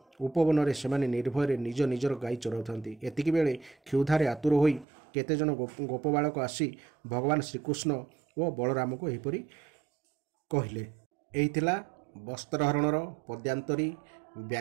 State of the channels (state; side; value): drops out; left; at 4.9 s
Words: ଉପବନରେ ସେମାନେ ନିର୍ଭୟରେ ନିଜ ନିଜର ଗାଈ ଚରାଉଥାନ୍ତି। ଏତିକିବେଳେ କ୍ଷୁଧାରେ ଆତୁର ହୋଇ କେତେଜଣ ଗୋପବାଳକ ଆସି ଭଗବାନ ଶ୍ରୀକୃଷ୍ଣ ଓ ବଳରାମଙ୍କୁ ଏହିପରି କହିଲେ। ଏହି ଥିଲା ବସ୍ତ୍ରହରଣର ପଦ୍ୟାନ୍ତରୀ